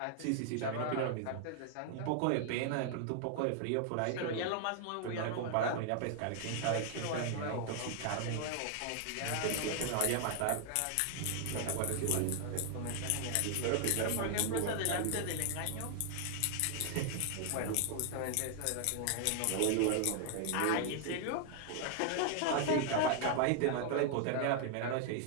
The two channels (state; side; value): different; both; correlation 0.00